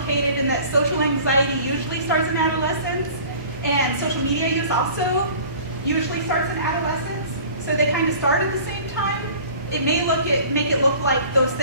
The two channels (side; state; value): both; inverted; correlation -0.46